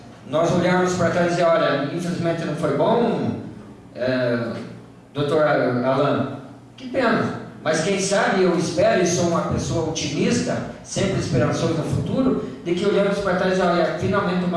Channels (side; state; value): both; identical; correlation 1.00